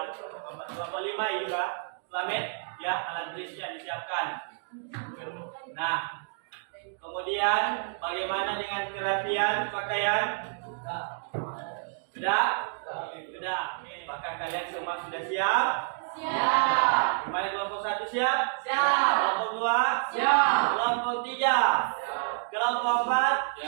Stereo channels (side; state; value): left; silent; digital silence